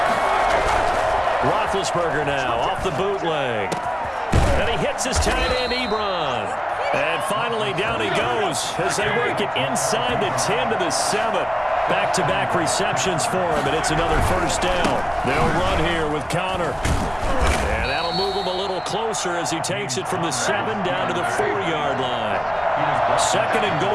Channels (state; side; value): identical; both; correlation 1.00